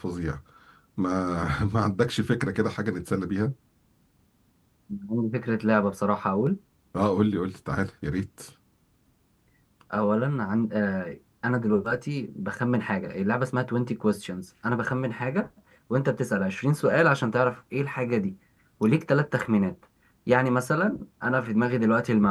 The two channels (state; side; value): identical; both; correlation 1.00